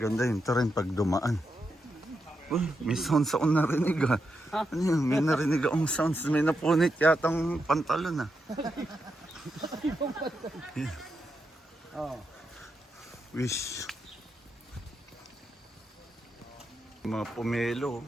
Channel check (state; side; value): normal; both; correlation 0.85